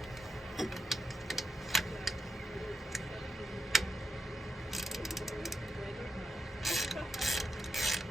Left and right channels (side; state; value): both; normal; correlation 0.85